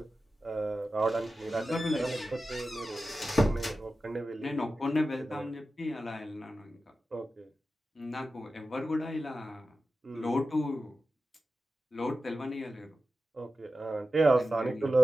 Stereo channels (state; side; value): normal; both; correlation 0.93